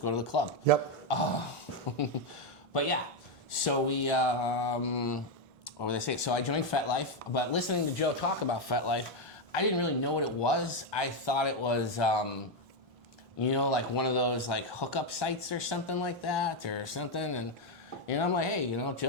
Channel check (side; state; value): both; normal; correlation 0.05